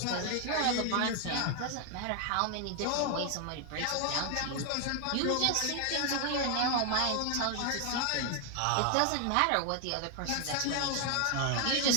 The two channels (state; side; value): different; both; correlation 0.01